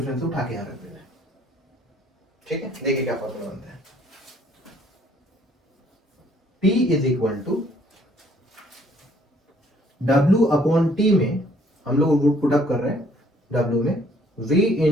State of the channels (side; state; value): both; normal; correlation 0.62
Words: उठा के यहां रख देना है। ठीक है, देखिए क्या फॉर्मूला बनता है, P is equal to W upon T में हम लोग रूट पुट अप कर रहे हैं, W में V